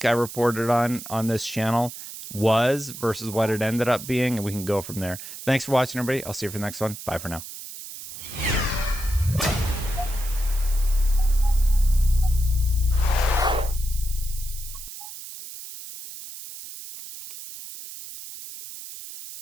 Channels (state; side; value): noise; right; hiss, 12 dB below the sound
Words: I reported on this channel was versus what it ended up being, and we can go from there. Thanks for watching, everybody. I'll see you for the next one. Bye for now.